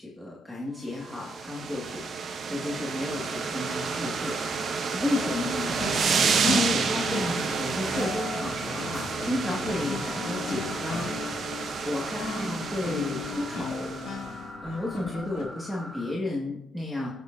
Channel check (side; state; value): both; normal; correlation 0.77